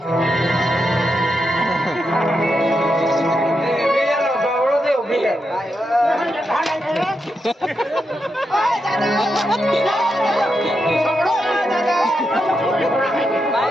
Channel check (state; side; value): normal; both; correlation 0.84